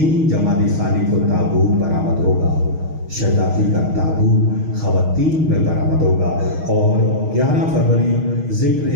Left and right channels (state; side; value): late; left; 6.4 ms